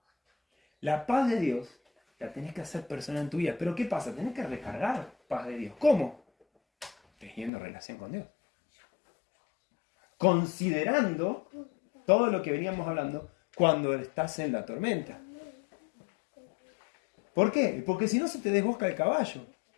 La paz de Dios la tenés que hacer personal en tu vida. Pero ¿qué pasa? Tenés que recargar paz de Dios. ¿Cómo? Teniendo relación con Dios. Considerando todo lo que veníamos hablando cuando estás en la tormenta. ¿Por qué? Porque si no se te desbosca el caballo.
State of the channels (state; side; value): drops out; right; at 7.5 s